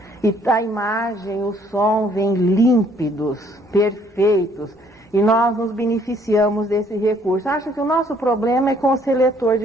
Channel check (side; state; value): both; normal; correlation 0.63